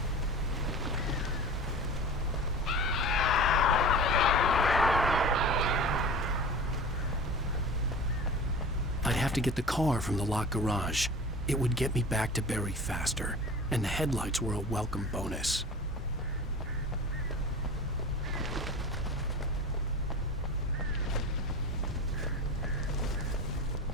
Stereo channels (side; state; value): both; normal; correlation 0.36